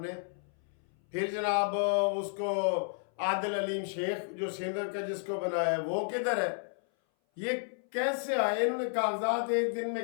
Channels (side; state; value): right; silent; 56 dB below the other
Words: फिर जनाब उसको आदिल अलीम शेख जो सिंध का जिसको बनाया वो किधर है? ये कैसे आए? इन्होंने कागजात एक दिन